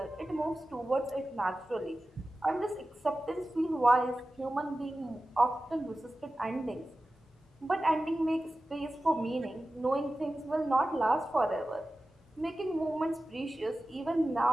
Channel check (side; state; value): both; normal; correlation 0.94